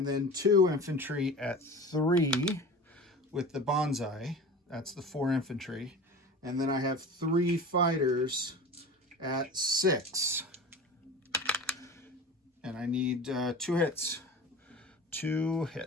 then 2 infantry at 3 with the bonsai. That's the 4 infantry. And then I have 3 fighters at 6. And I need 2 hits. 2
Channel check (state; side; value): normal; both; correlation 0.35